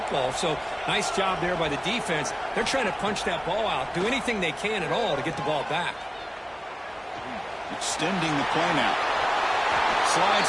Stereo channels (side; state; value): both; identical; correlation 1.00